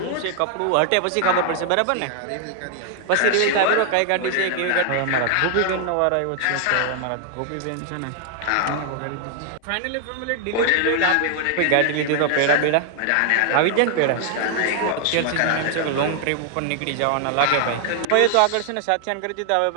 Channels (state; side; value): different; both; correlation 0.00